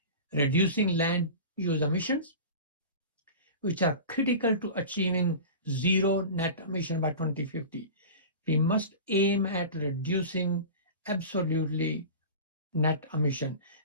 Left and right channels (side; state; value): both; inverted; correlation -0.34